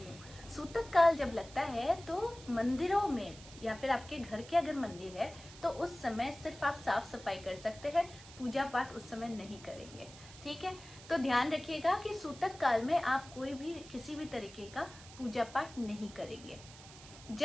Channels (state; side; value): noise; right; hiss, 18 dB below the sound